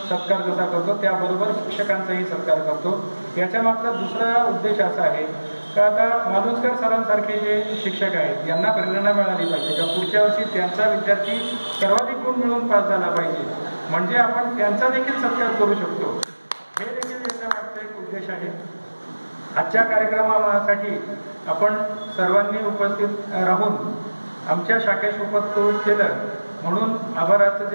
जसा करतो त्याबरोबर शिक्षकांचाही सत्कार करतो. याच्या मागचा दुसरा उद्देश असा आहे का आता मालुसकर सरांसारखे जे शिक्षक आहेत यांना प्रेरणा मिळाली पाहिजे का पुढच्या वर्षी त्यांचा विद्यार्थी सर्वाधिक गुण मिळवून पास झाला पाहिजे, म्हणजे आपण त्यांचा देखील सत्कार करू शकतो. हे देखील याच्या मागचा एक उद्देश आहे. आजच्या कार्यक्रमासाठी आपण सर्वांनी उपस्थित राहून आमच्या शाखेस उपस्थित केलं म्हणून आभाराचं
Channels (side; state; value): both; inverted; correlation -1.00